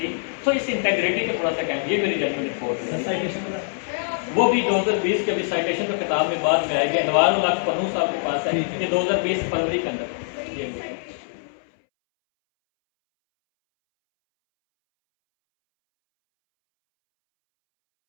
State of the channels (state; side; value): silent; right; 63 dB below the other